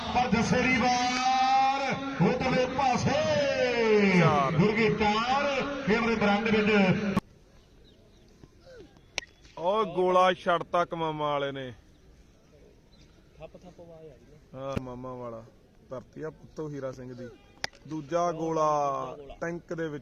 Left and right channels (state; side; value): identical; both; correlation 1.00